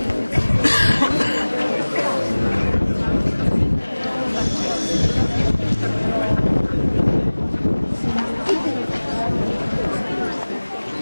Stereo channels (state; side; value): inverted; both; correlation -1.00